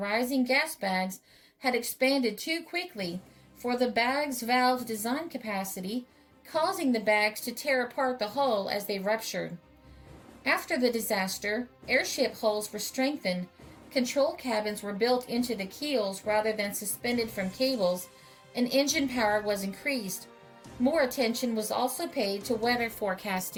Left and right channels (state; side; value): identical; both; correlation 1.00